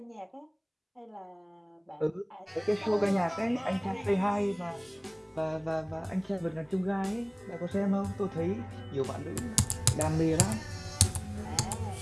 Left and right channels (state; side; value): identical; both; correlation 1.00